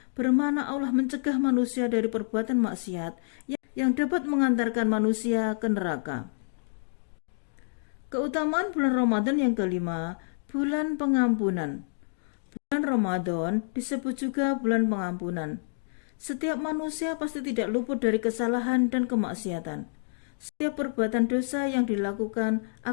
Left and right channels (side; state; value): right; silent; digital silence